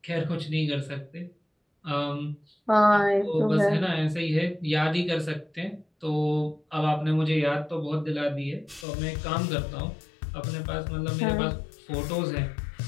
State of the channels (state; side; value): drops out; right; at 8.8 s